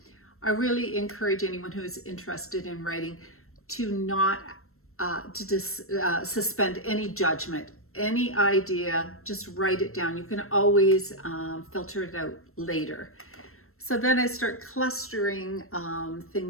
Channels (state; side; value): late; right; 0.62 ms